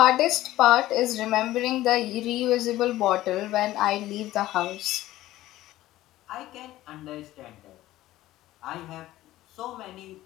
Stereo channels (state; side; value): quieter; right; 15.6 dB